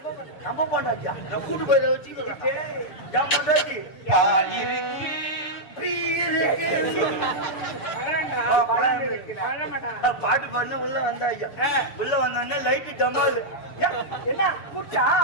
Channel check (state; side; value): late; right; 6.9 ms